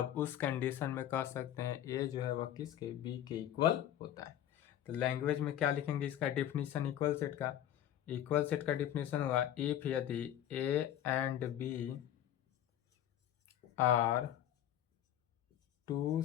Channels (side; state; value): right; quieter; 11.2 dB